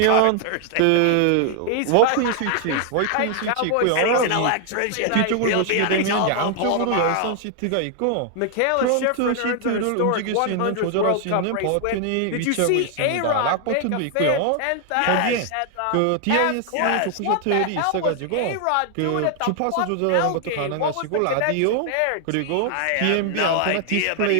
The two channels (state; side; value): different; both; correlation 0.00